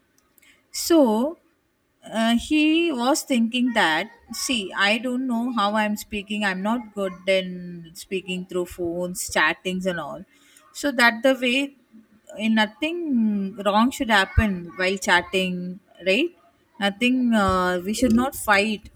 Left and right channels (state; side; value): identical; both; correlation 1.00